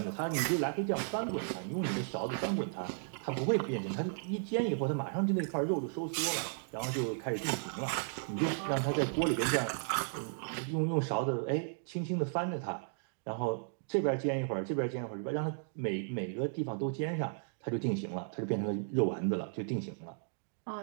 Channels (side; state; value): left; silent; digital silence